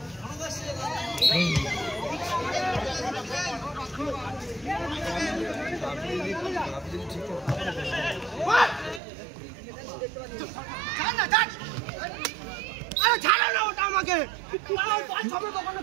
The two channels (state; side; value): drops out; left; at 9.0 s